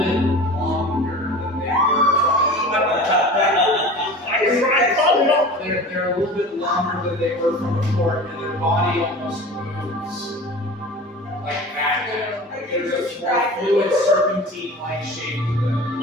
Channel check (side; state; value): both; normal; correlation 0.36